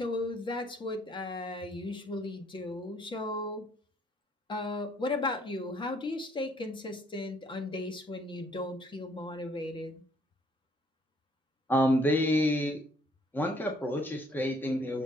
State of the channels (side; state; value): both; normal; correlation 0.64